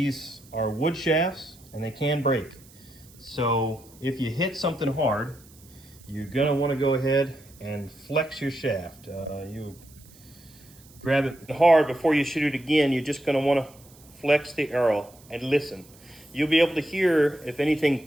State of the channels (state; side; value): noise; right; hiss, 25 dB below the sound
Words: are wood shafts and they can break. So if you hit something hard, you're gonna want to go ahead and flex your shaft. You grab it hard before you shoot it again. You're just gonna want to flex the arrow and listen. You'll be able to hear if anything